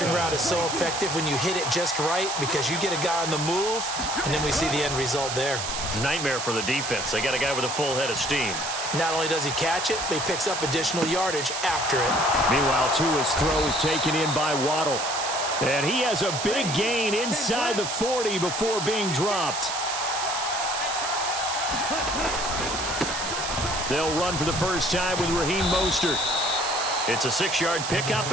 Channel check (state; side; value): noise; right; hiss, 4 dB below the sound